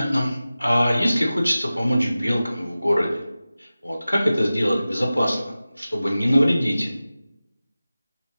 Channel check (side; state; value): both; inverted; correlation -0.96